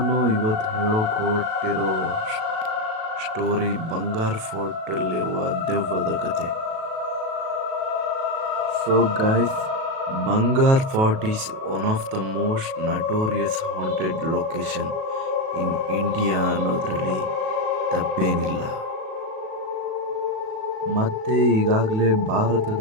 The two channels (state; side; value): late; left; 37 ms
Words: ಇವತ್ತು ಹೇಳೋಕೆ ಹೊರಟಿರೋ ಸ್ಟೋರಿ ಬಂಗಾರ್ ಫೋರ್ಟಲ್ಲಿರುವ ದೆವ್ವದ ಕತೆ. So guys, Bangar Fort is one of the most notorious haunted location in India ಅನ್ನೋದ್ರಲ್ಲಿ ತಪ್ಪೇನಿಲ್ಲ. ಮತ್ತೆ ಈಗಾಗಲೇ